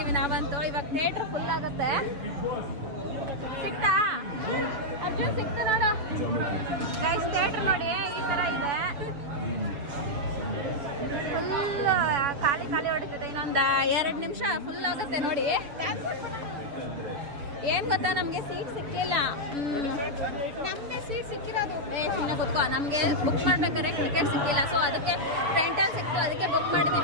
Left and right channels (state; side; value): late; left; 7.2 ms